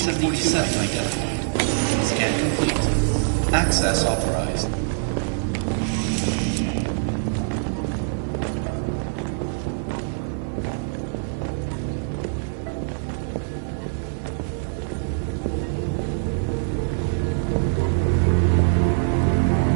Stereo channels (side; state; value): left; silent; 63 dB below the other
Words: identified. Scan complete. Access authorized.